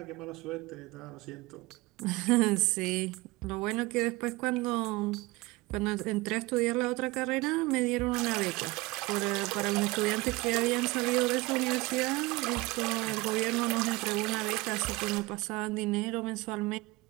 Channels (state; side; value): quieter; left; 22.3 dB